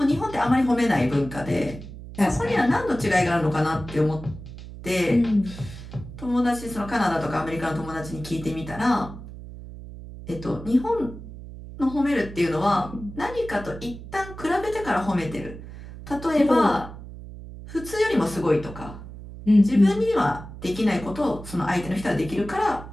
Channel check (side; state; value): right; noise; hum, 13 dB below the sound